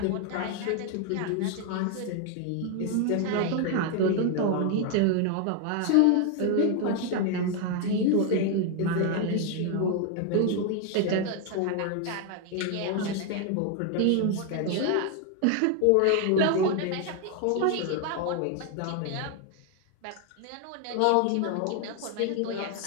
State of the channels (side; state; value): both; different; correlation 0.01